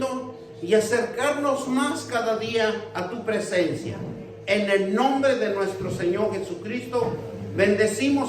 y acercarnos más cada día a tu presencia. En el nombre de nuestro Señor Jesucristo,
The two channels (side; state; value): both; identical; correlation 1.00